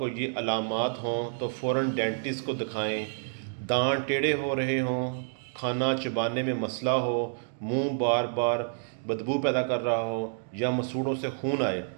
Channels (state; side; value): silent; left; digital silence